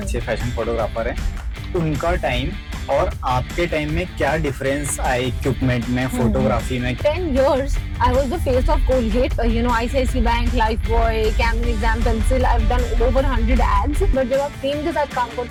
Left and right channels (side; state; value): both; identical; correlation 1.00